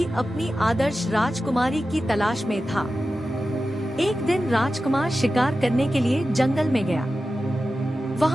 अपनी आदर्श राजकुमारी की तलाश में था। एक दिन राजकुमार शिकार करने के लिए जंगल में गया।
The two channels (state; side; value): normal; both; correlation 0.93